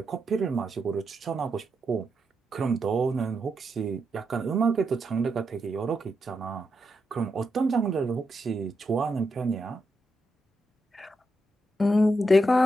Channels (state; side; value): normal; both; correlation 0.84